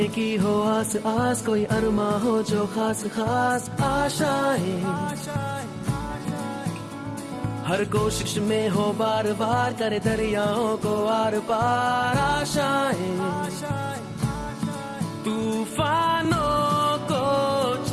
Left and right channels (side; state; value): both; identical; correlation 1.00